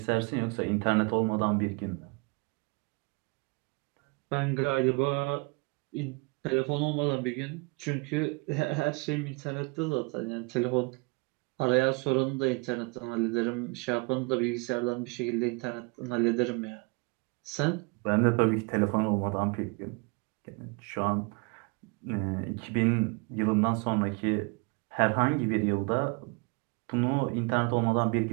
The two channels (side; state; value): left; quieter; 29.8 dB